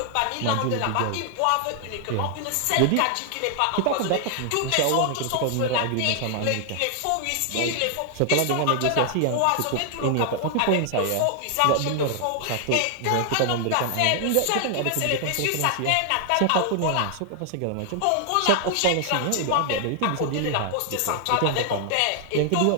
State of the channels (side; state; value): both; different; correlation 0.00